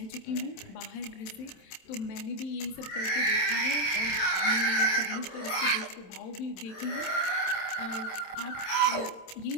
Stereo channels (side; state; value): right; late; 27 ms